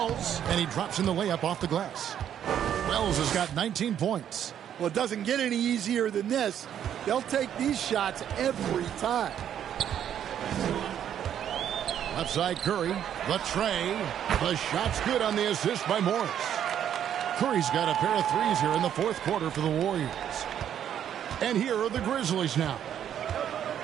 and he drops in the layup off the glass. Wells has got 19 points. Well, it doesn't get any easier than this. They'll take these shots every time. Left side Curry, the tray. The shot's good on the assist by Morris. Curry's got a pair of threes here in the fourth quarter for the Warriors. And here are the Grizzlies now.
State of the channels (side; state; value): left; quieter; 9.7 dB